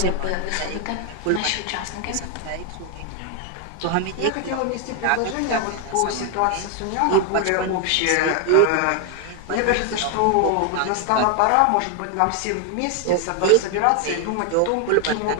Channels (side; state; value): both; different; correlation 0.00